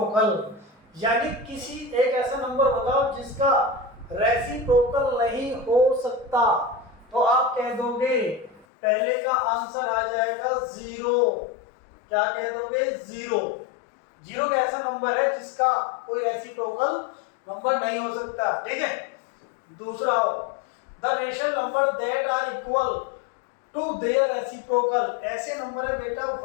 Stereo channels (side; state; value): right; drops out; at 8.7 s